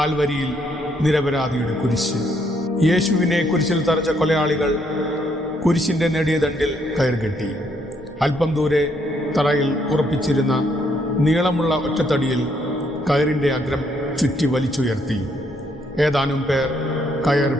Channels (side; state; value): both; normal; correlation 0.72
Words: നിരപരാധിയുടെ കുരിശ്. യേശുവിനെ കുരിശിൽ തറച്ച കൊലയാളികൾ കുരിശിൻ്റെ നെടിയ ദണ്ടിൽ കയർകെട്ടി. അല്പം ദൂരെ തറയിൽ ഉറപ്പിച്ചിരുന്ന നീളമുള്ള ഒറ്റത്തടിയിൽ കയറിൻ്റെ അഗ്രം ചുറ്റി വലിച്ചുയർത്തി. ഏതാനും പേർ കയർ